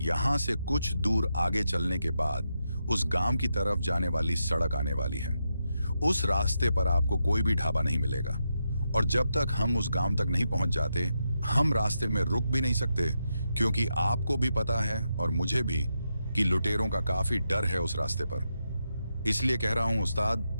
यहां से कुछ दूर आगे चलने के बाद उस गांव की तरफ जाने वाली सड़क आने वाली है। उस रास्ते पर आपको कोई भी ढाबा नहीं मिलेगा और जब तक हम उस गांव तक नहीं पहुंच जाते, हम रास्ते में रुक भी नहीं सकते, क्योंकि आपको भी पता है और मुझे भी कि लुटेरों का काफी डर है उस रास्ते पर। इसलिए कह रहा हूं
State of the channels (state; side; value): inverted; both; correlation -0.85